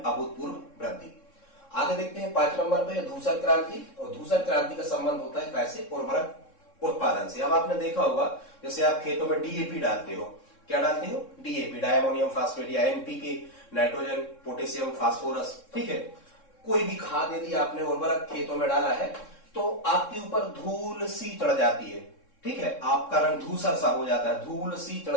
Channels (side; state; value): right; late; 3.7 ms